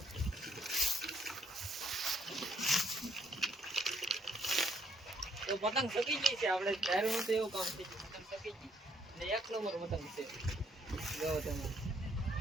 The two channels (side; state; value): both; normal; correlation 0.69